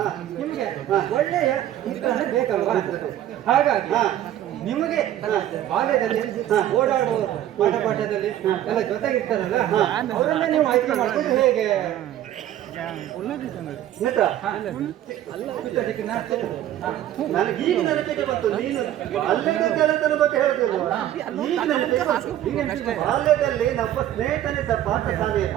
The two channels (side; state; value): left; quieter; 12.3 dB